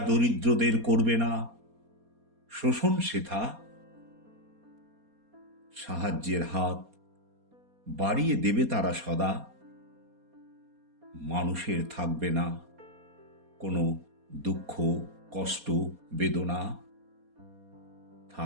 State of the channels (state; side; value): late; left; 4.2 ms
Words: দরিদ্রদের করবে না শোষণ সেথা, সাহায্যের হাত বাড়িয়ে দেবে তারা সদা, মানুষের থাকবে না কোনো দুঃখ কষ্ট বেদনা,